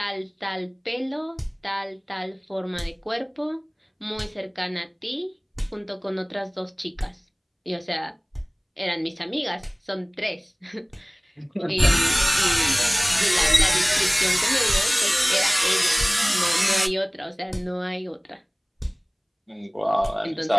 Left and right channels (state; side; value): identical; both; correlation 1.00